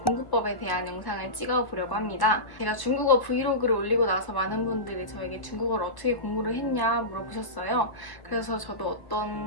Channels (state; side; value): late; right; 1.1 ms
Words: 공부법에 대한 영상을 찍어보려고 합니다. 제가 중국어 브이로그를 올리고 나서 많은 분들이 저에게 중국어를 어떻게 공부를 했냐 물어보셨어요. 그래서 저도